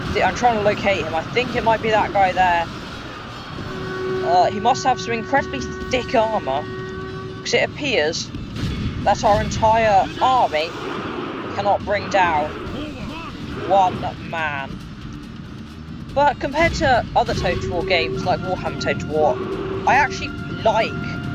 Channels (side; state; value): both; identical; correlation 1.00